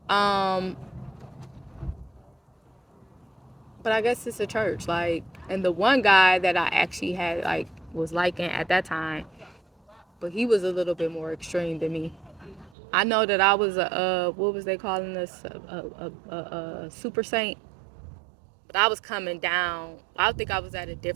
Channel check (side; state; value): left; drops out; at 12.7 s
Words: Um, but I guess it's a church. Like, and the one guy that I actually had like was liking at that time, but he was a little bit more extreme than me. I know that I was a what was they calling us a super saint, but I was coming down. I think I was at a